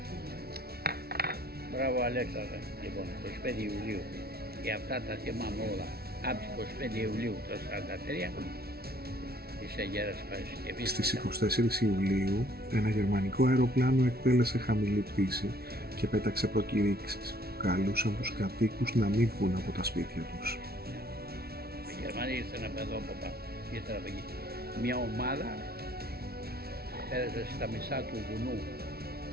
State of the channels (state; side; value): late; left; 0.45 ms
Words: Μπράβο Αλέξανδρε, λοιπόν, 25 Ιουλίου. Και αυτά τα θυμάμαι όλα. Από τις 25 Ιουλίου το 1943 της Αγέρας Παρασκευής. Στις 24 Ιουλίου ένα γερμανικό αεροπλάνο εκτέλεσε χαμηλή πτήση και πέταξε προκηρύξεις που καλούσαν τους κατοίκους να μην βγουν από τα σπίτια τους. Οι Γερμανοί ήρθαν από εδώ από πάνω, ήρθαν από εκεί. Μια ομάδα πέρασε στα μισά του βουνού.